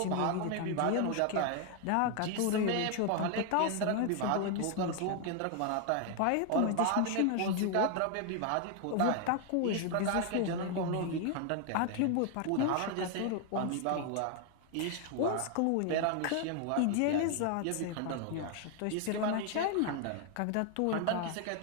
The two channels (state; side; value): different; both; correlation 0.01